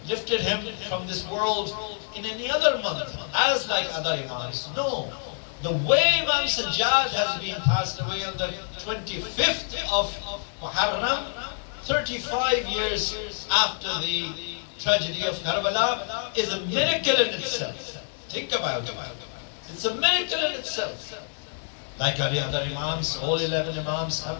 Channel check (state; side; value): silent; right; 60 dB below the other